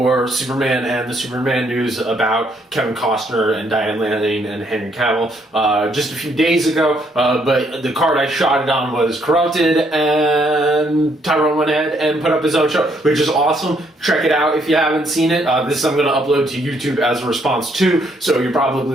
Superman and the Superman news about Kevin Costner and Diane Lane and Henry Cavill just a few days ago, but the card I shot it on was corrupted, and Tyrone went ahead and put up his own show, which is awesome. Check it out if you haven't seen it. This I'm going to upload to YouTube as a response to, so you're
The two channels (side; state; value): both; normal; correlation 0.70